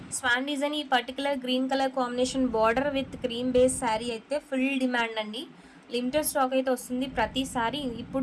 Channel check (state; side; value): identical; both; correlation 1.00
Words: swan design. ఈ particular green colour combination border with cream base sari అయితే ఫుల్ డిమాండ్ అండి. లిమిటెడ్ స్టాక్ అయితే వస్తుంది ప్రతిసారి.